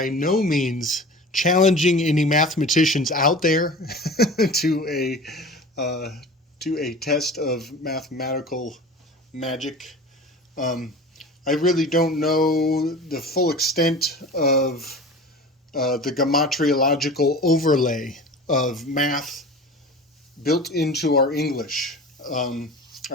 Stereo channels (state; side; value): normal; both; correlation 0.37